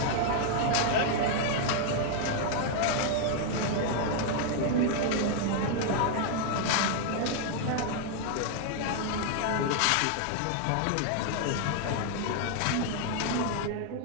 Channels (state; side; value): different; both; correlation 0.00